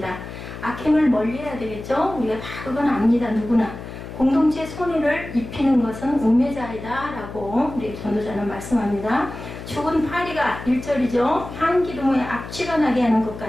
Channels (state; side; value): noise; left; hum, 11 dB below the sound